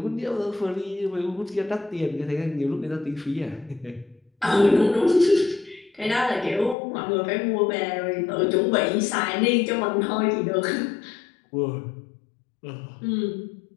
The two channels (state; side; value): drops out; right; at 6.8 s